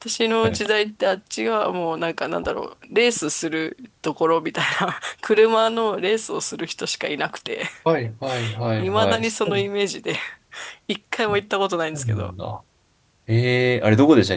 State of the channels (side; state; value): both; identical; correlation 1.00